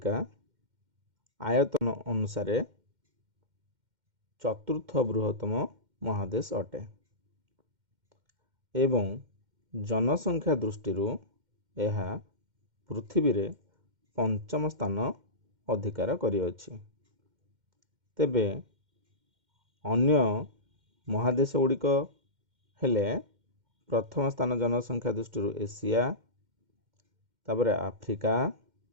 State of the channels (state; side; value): late; left; 2.1 ms